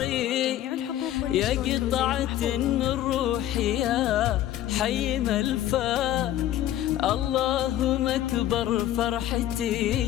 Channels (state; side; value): quieter; right; 12.9 dB